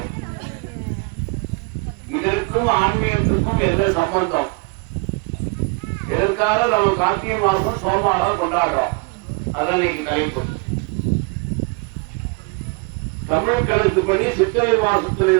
இதற்கும் ஆன்மீகத்துக்கும் என்ன சம்பந்தம்? எதற்காக நம்ம கார்த்திகை மாசம் சோமவாரம் கொண்டாடுறோம்? அதான் இன்னைக்கு தலைப்பு. தமிழ் கணக்குப்படி சித்திரை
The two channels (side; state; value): left; quieter; 31.1 dB